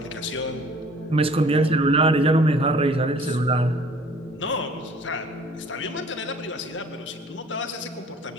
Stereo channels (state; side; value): normal; both; correlation 0.53